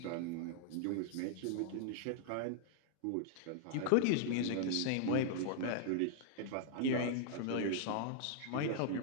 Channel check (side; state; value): both; different; correlation -0.01